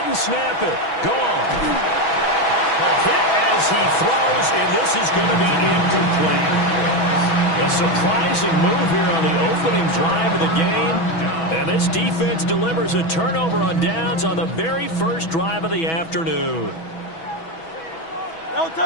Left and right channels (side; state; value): right; late; 6.1 ms